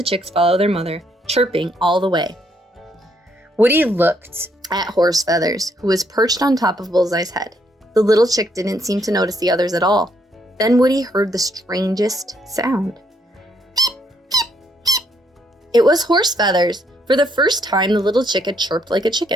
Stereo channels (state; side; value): normal; both; correlation 0.72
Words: chicks follow their mother, chirping all the way. Woody looked at Horse Feathers, who was perched on top of Bullseye's head. The little chick didn't seem to notice the others at all. Then Woody heard the strangest sound. It was Horse Feathers. For the first time, the little chick had chirped like a